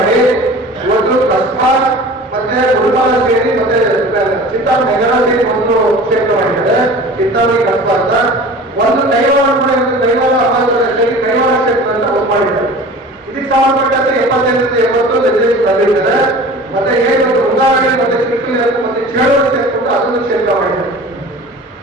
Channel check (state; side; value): normal; both; correlation 0.40